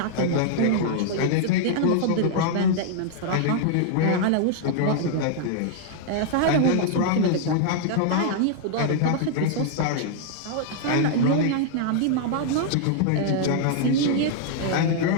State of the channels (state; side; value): different; both; correlation -0.01